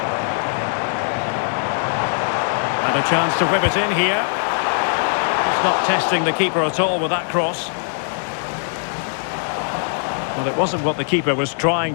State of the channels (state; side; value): silent; right; digital silence